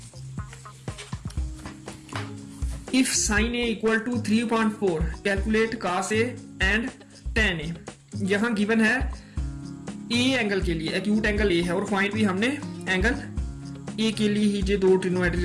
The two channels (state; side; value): identical; both; correlation 1.00